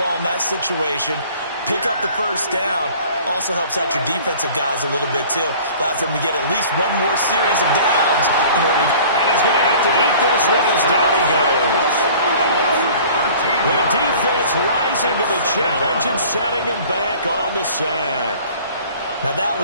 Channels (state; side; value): inverted; both; correlation -0.48